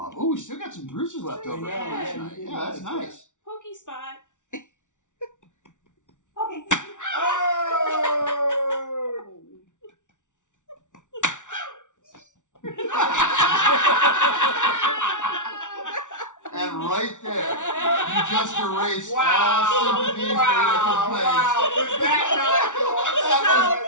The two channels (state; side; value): late; right; 0.86 ms